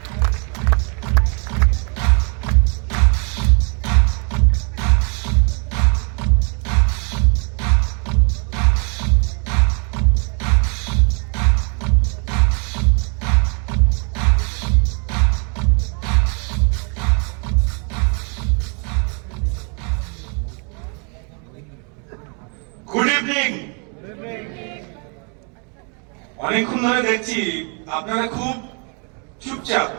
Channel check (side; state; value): left; quieter; 36.4 dB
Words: Good evening. অনেকক্ষণ ধরে দেখছি আপনারা খুব চুপচাপ।